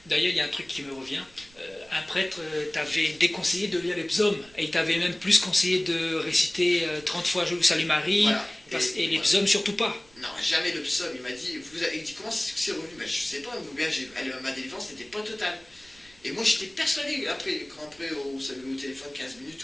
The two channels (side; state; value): right; noise; rumble, 26 dB below the sound